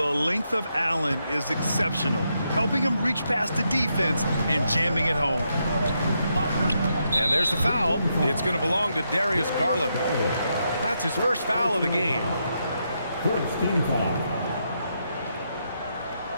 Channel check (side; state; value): both; inverted; correlation -0.81